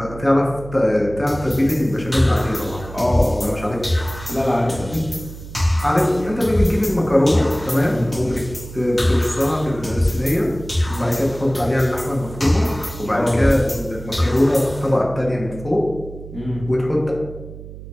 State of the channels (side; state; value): right; noise; hum, 14 dB below the sound